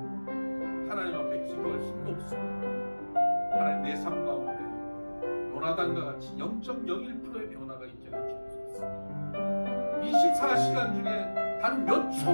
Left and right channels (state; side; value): inverted; both; correlation -1.00